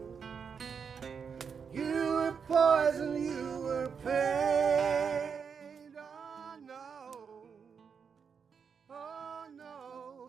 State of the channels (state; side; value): quieter; left; 6.4 dB